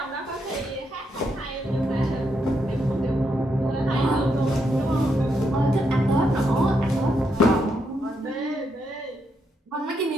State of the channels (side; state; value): both; normal; correlation 0.80